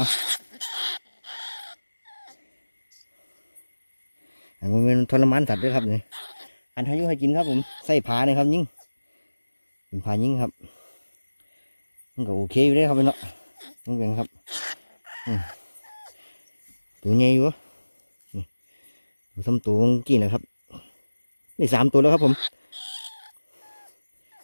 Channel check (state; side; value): inverted; both; correlation -1.00